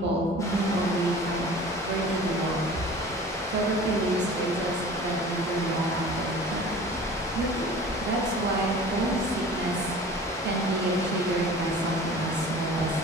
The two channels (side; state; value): both; normal; correlation 0.42